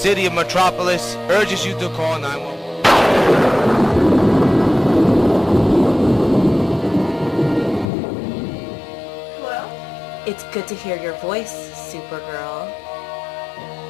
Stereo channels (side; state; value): right; drops out; at 7.9 s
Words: of Metropolis urges you to call 911. It's good to hear your voice, Supergirl.